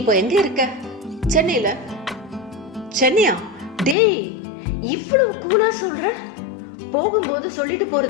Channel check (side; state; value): right; drops out; at 4.0 s